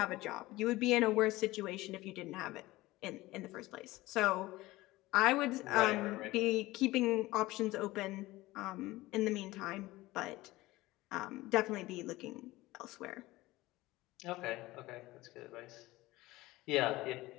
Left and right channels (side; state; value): right; quieter; 18.7 dB